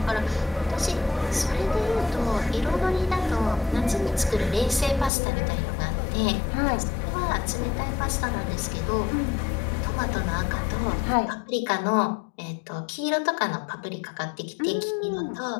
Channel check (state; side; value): drops out; right; at 5.1 s